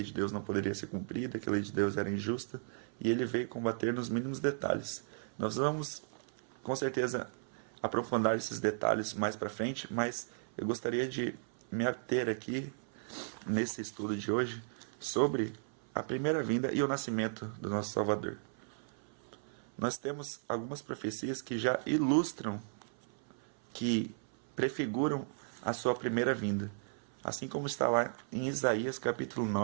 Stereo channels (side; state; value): left; silent; 54 dB below the other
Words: de Deus não poderia ser cumprida, que a lei de Deus era injusta, e ele veio combater nos mínimos detalhes. Nós vamos, com certeza, aprofundar esses detalhes mais para frente, mas eu gostaria de me ater aqui, nesse estudo de hoje, sobre a primeira vinda e o nascimento do nosso Salvador. Nós temos algumas profecias que já ilustram, que prefiguram a sua primeira vinda, assim como está lá em Isaías capítulo